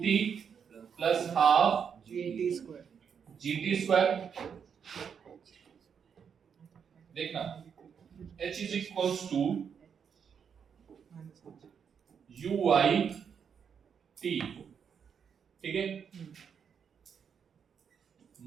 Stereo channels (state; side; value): quieter; left; 7.1 dB